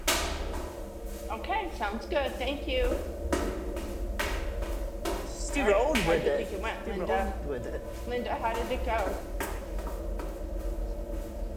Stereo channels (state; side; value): identical; both; correlation 1.00